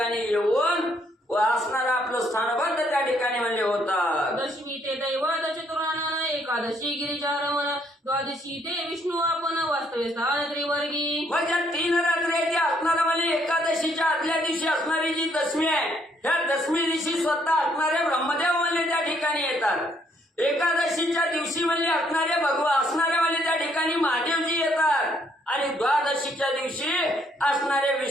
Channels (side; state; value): both; normal; correlation 0.69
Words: येऊन असणारा आपलं स्थानबद्ध त्या ठिकाणी म्हणजे होतात. दशमी ते दैवत चतुरानन एकादशी गिरिजारमण द्वादशी ते विष्णू आपण वास्तव्य स्थान त्रिवर्गी. मग या 3 रात्री आहे ती असणारा म्हणजे एकादशीच्या आदल्या दिवशी असणारी जी दशमी आहे, ह्या दशमी दिवशी स्वतः असणारे ब्रह्मदेव म्हणजे त्या ठिकाणी येतात. एकादशीच्या दिवशी म्हणजे असणारे असणारे म्हणजे त्या ठिकाणी महादेवजी येतात. आणि द्वादशीच्या दिवशी असणारे